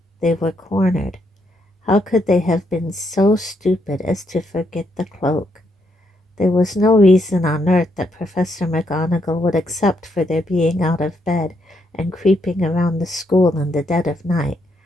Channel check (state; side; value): normal; both; correlation 0.76